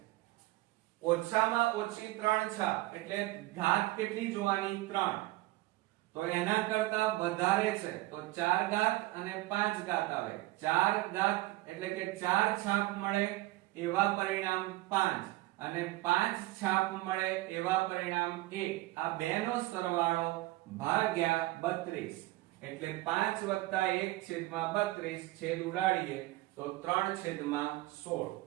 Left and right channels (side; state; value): left; quieter; 18.9 dB